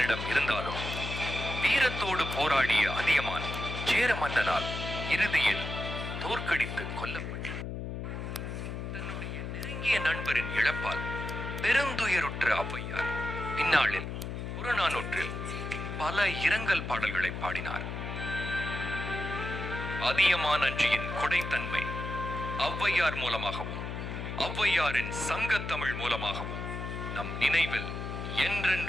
இருந்தாலும் வீரத்தோடு போராடிய அதியமான் சேர மன்னனால் இறுதியில் தோற்கடித்து கொல்லப்பட்டார். தன்னுடைய நெருங்கிய நண்பரின் இழப்பால் பெருந்துயருற்ற ஔவையார் பின்னாளில் புறநானூற்றில் பல இரங்கல் பாடல்களை பாடினார். அதியமான் அஞ்சியின் கொடைத்தன்மை ஔவையார் மூலமாகவும் ஔவையாரின் சங்கத்தமிழ் மூலமாகவும் நம் நினைவில்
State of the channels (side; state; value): left; noise; hum, 5 dB below the sound